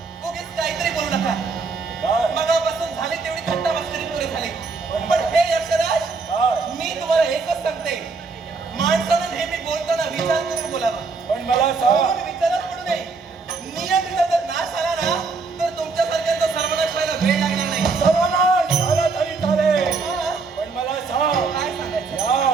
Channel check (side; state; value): left; quieter; 4.4 dB